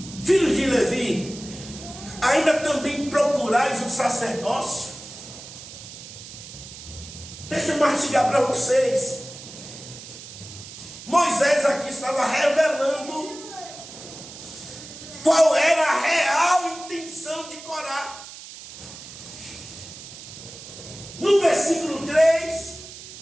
filhos de Levi, ainda também procurais o sacerdócio. Deixa eu mastigar para vocês. Moisés aqui estava revelando qual era a real intenção de Corá. No versículo 3,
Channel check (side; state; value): right; noise; hiss, 14 dB below the sound